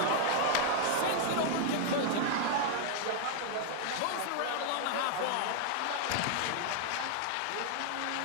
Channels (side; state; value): both; different; correlation 0.00